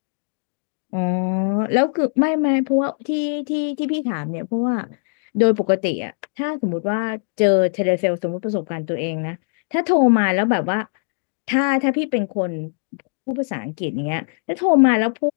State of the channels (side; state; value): right; silent; digital silence